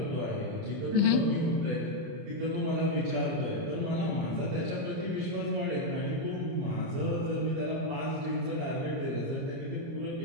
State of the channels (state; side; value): late; left; 29 ms